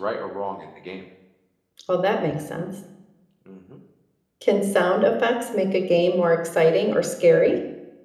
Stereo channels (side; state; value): both; identical; correlation 1.00